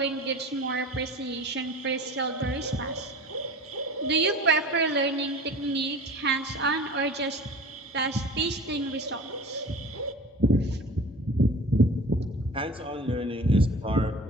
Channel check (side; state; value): both; normal; correlation 0.39